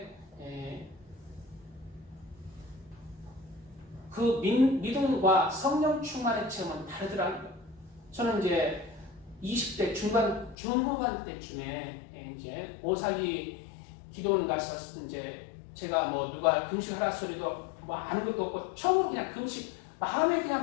그 믿음과 성령 충만의 체험은 다르더라고요. 저는 이제 20대 중후반 때쯤에 이제 오살리 기도원 가서 이제 제가 뭐 누가 금식하라 소리도 뭐 아는 것도 없고 처음으로 그냥 금식 마음에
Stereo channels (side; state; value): right; drops out; at 10.6 s